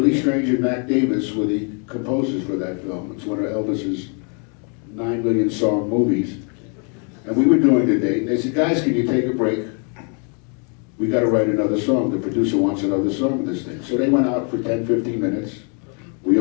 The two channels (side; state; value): right; quieter; 38.8 dB